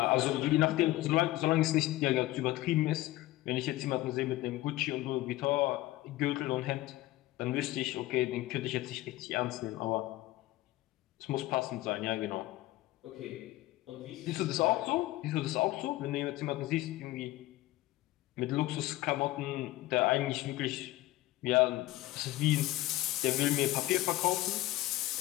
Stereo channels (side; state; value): right; quieter; 17.2 dB